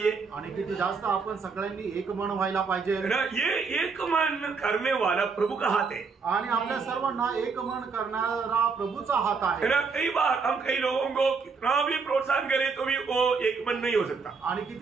आणि किती जास्त आपण सगळ्यांनी एक मन व्हायला पाहिजे। ये एक मन करने वाला प्रभु का हाथ है आणि आपल्या सर्वांना एक मन करणारा प्रभूचा हात आहे। कई बार हम कई लोगों को कितना भी प्रोत्साहन करें तो भी वो एक मन नहीं हो सकता। आणि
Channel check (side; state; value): left; quieter; 5.0 dB